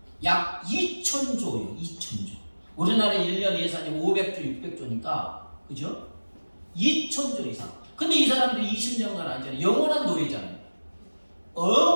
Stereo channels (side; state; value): both; inverted; correlation -1.00